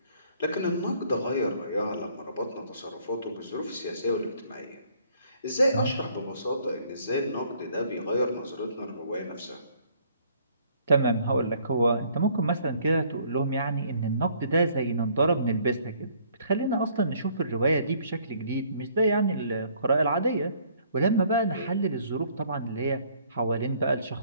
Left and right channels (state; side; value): inverted; both; correlation -0.61